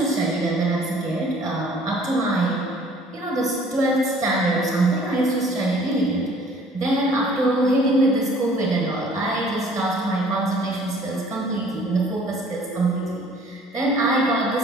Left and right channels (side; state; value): both; normal; correlation 0.54